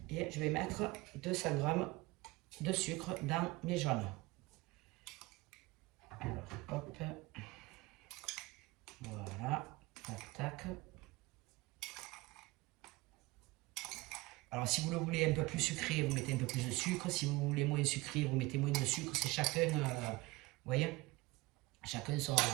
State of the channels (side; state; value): left; quieter; 21.7 dB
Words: Et je vais mettre 200 grammes de sucre dans mes jaunes. Alors, hop, voilà, tac, tac. Alors, si vous le voulez un peu plus sucré, vous mettez un peu plus de sucre. Si vous voulez moins sucré, vous mettez moins de sucre. C'est chacun, vous voyez, chacun